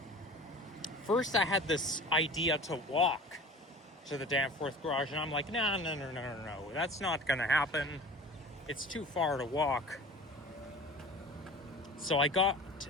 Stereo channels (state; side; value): normal; both; correlation 0.40